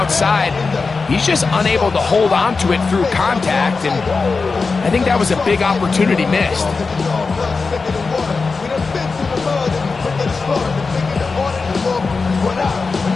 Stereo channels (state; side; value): quieter; right; 4.4 dB